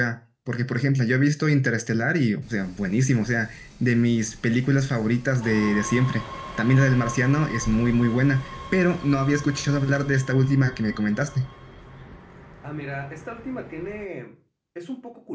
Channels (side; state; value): both; identical; correlation 1.00